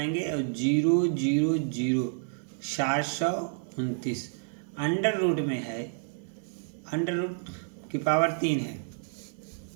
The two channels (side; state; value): left; silent; 58 dB below the other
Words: और 000 729 अंडर रूट में है, अंडर रूट की पावर 3 है